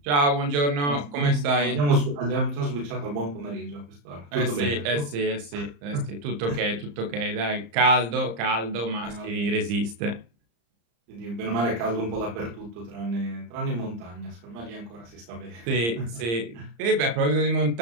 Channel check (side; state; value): left; late; 35 ms